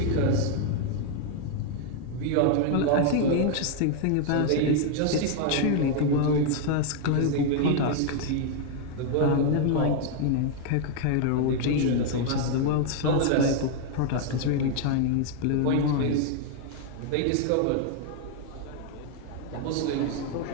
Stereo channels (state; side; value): different; both; correlation 0.00